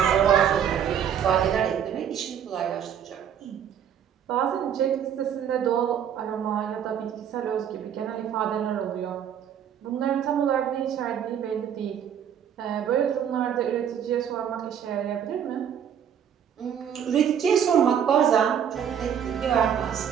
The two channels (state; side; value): quieter; left; 8.8 dB